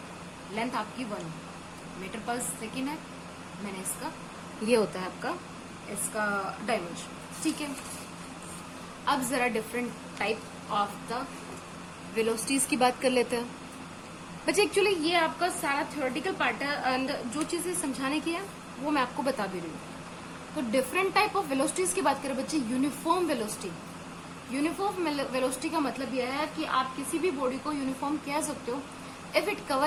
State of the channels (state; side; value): identical; both; correlation 1.00